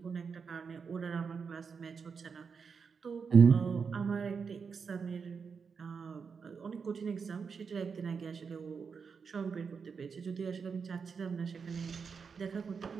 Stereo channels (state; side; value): quieter; left; 5.8 dB